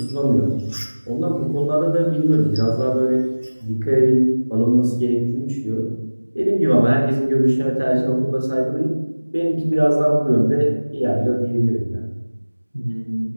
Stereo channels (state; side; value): inverted; both; correlation -1.00